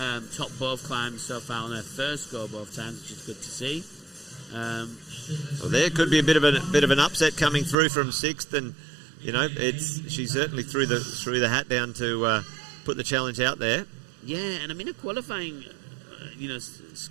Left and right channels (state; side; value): drops out; left; at 7.8 s